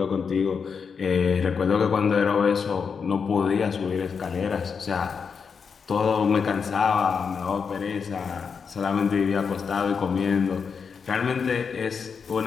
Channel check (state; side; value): quieter; right; 6.0 dB